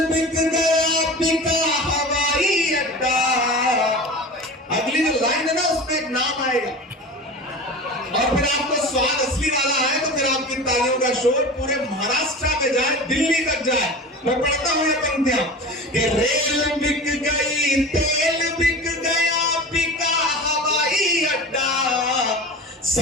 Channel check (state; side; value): normal; both; correlation 0.33